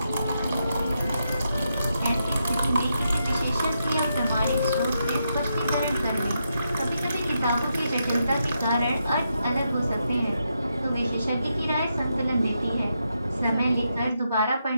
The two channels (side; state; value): both; inverted; correlation -0.83